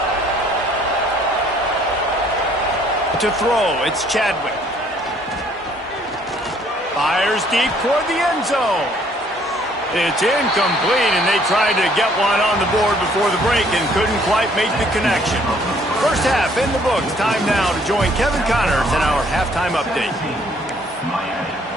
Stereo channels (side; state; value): both; normal; correlation 0.62